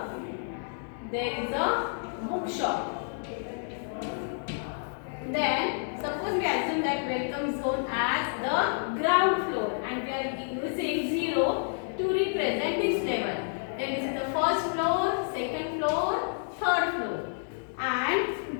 there is a bookshop. Then, suppose we assume that welcome zone as the ground floor and we are using 0 to represent this level. Then this is the first floor, second floor, third floor. And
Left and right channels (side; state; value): right; silent; digital silence